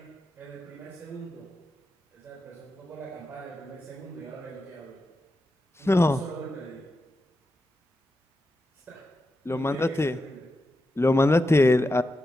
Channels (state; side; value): normal; both; correlation 0.88